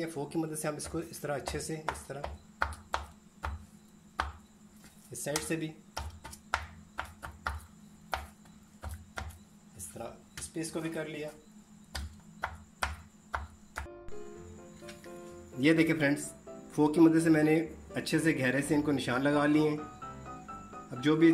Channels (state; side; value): identical; both; correlation 1.00